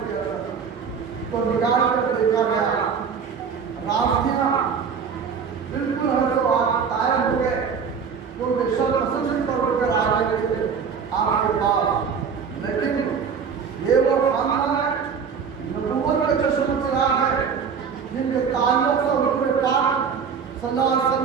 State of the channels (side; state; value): left; quieter; 6.4 dB